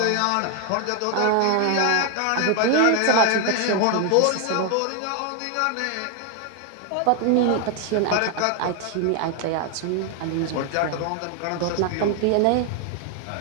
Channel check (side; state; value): both; different; correlation 0.00